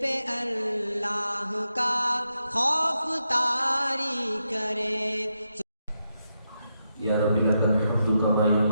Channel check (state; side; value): inverted; both; correlation -0.84